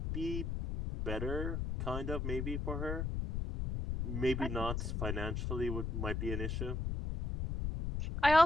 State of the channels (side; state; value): left; noise; rumble, 2 dB below the sound